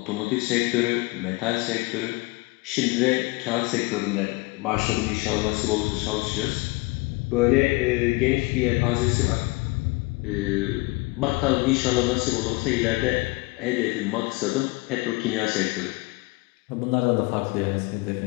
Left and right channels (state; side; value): quieter; right; 24.5 dB